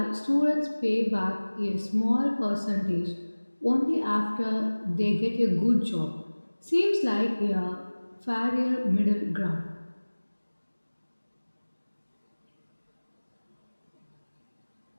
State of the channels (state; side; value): inverted; both; correlation -1.00